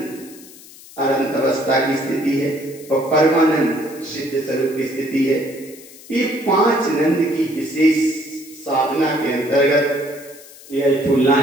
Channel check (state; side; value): noise; left; hiss, 20 dB below the sound